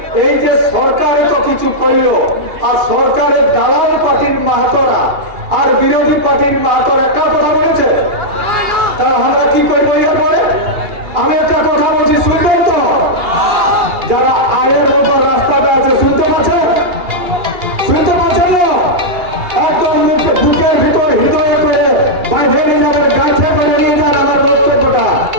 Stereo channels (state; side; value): late; left; 2.8 ms